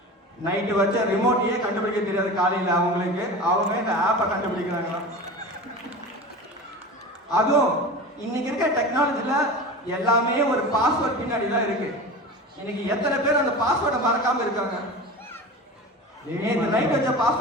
நைட்டு வச்ச ரிமோட்டையே கண்டுபிடிக்க தெரியாது காலையில அவங்களுக்கு, அவங்க இந்த ஆப்பை கண்டுபிடிக்கிறாங்களாம். அதுவும் இன்னைக்கு இருக்க டெக்னாலஜில எல்லாமே ஒரு பாஸ்வேர்ட் பின்னாடி தான் இருக்கு. இன்னைக்கு எத்தனை பேர் அந்த பாஸ்வேர்டை மறக்காம இருக்காங்க? நேற்று நைட் வச்ச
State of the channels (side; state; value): both; normal; correlation 0.31